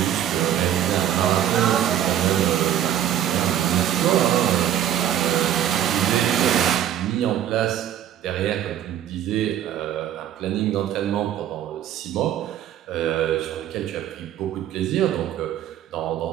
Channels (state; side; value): quieter; left; 11.0 dB